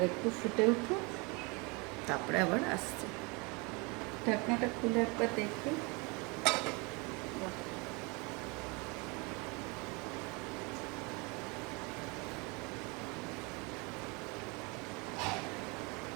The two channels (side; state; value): left; quieter; 28.6 dB